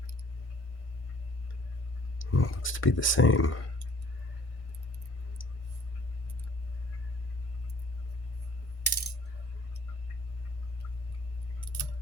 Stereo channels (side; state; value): right; late; 1.6 ms